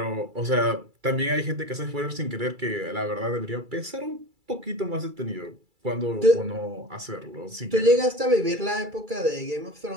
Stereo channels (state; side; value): late; left; 2.3 ms